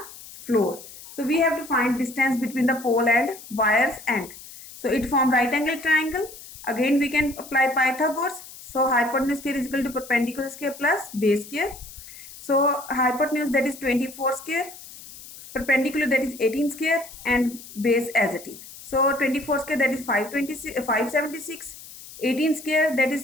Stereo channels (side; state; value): left; noise; hiss, 16 dB below the sound